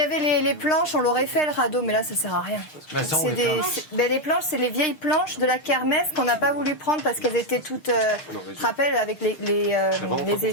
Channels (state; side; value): late; right; 6.5 ms